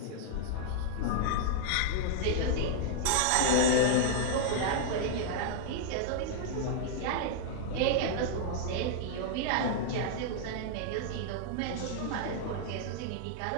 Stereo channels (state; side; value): different; both; correlation -0.01